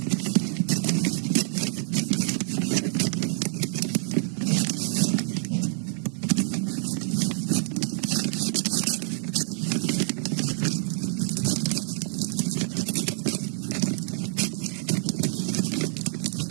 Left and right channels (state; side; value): silent; left; 55 dB below the other